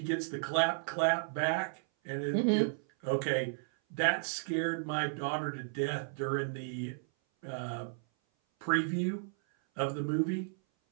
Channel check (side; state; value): left; silent; 55 dB below the other